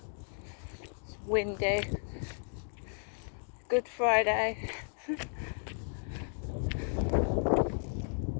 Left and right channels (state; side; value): silent; right; 55 dB below the other